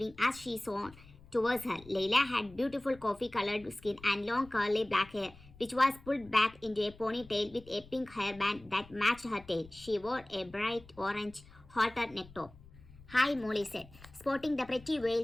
as she swam towards her. Layla had beautiful coffee-colored skin and long curly black hair, which was pulled back into a ponytail with a pink hairband that matched her tail. She wore a bright orange halter neck top. "Hi," Molly said, sporting the pretty veil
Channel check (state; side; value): noise; left; rumble, 22 dB below the sound